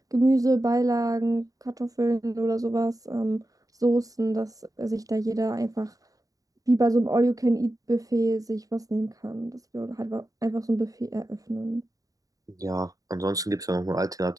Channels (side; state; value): left; late; 0.17 ms